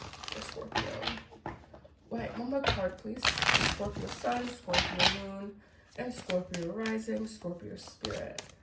Scorpio. Wait, one more card, please. Scorpio Sun, Scorpio Moon, and Scorpio Rising, Scorpio Spirit.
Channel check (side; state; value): both; identical; correlation 1.00